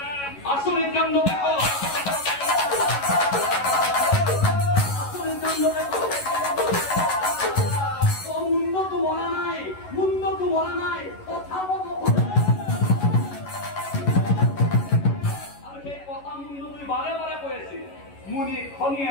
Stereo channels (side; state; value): right; late; 11 ms